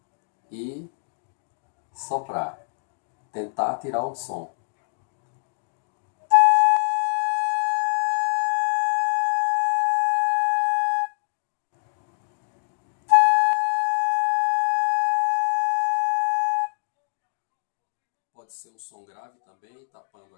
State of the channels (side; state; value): right; silent; digital silence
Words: e soprar, tentar tirar um som. Pode ser um som grave também, tapando